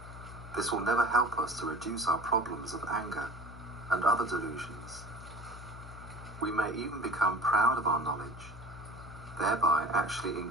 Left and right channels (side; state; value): left; noise; hum, 15 dB below the sound